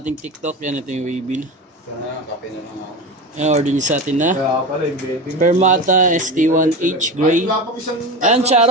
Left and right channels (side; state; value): both; normal; correlation 0.26